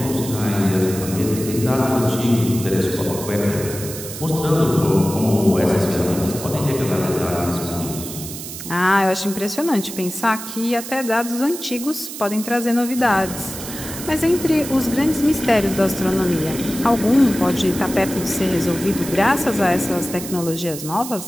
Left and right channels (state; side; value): noise; right; hiss, 10 dB below the sound